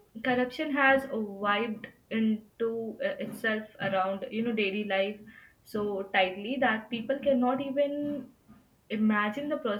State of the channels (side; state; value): both; identical; correlation 1.00